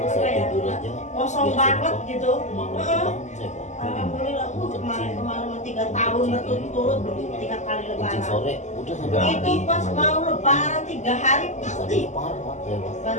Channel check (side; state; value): right; late; 0.34 ms